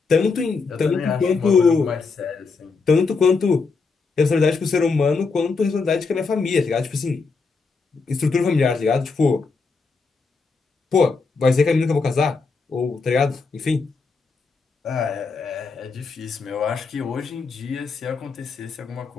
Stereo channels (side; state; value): right; quieter; 4.5 dB